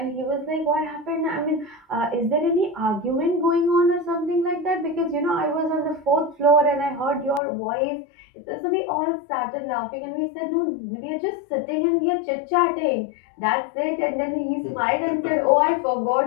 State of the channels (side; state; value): right; drops out; at 7.4 s